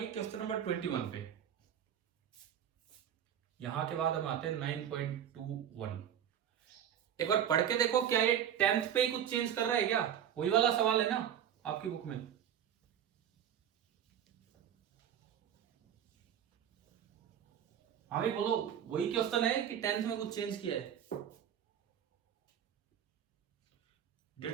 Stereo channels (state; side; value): quieter; left; 9.6 dB